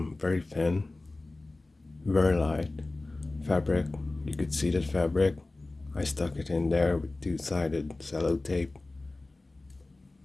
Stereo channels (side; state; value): right; quieter; 3.0 dB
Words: very thin, very light fabric. You could see that fabric. I stuck it in there with two-sided cello tape.